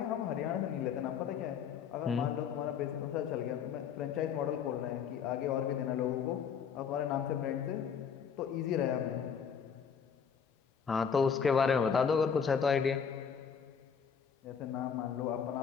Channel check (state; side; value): quieter; right; 7.0 dB